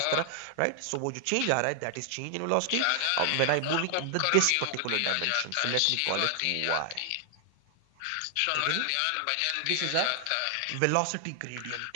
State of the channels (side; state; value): both; different; correlation 0.00